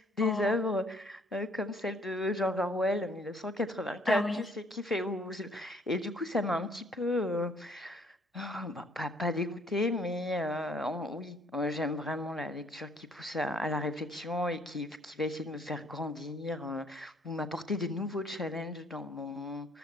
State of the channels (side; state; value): both; normal; correlation 0.62